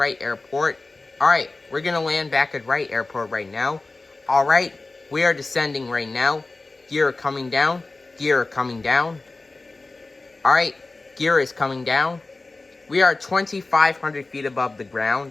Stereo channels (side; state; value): right; quieter; 3.4 dB